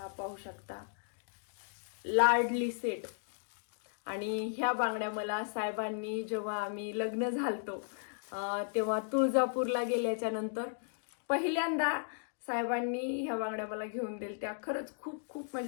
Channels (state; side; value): silent; right; digital silence